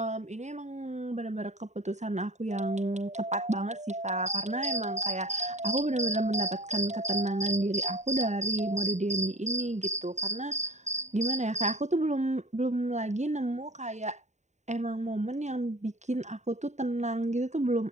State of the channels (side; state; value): left; late; 0.34 ms